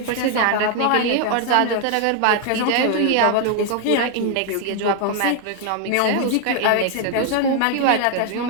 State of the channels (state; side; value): different; both; correlation 0.00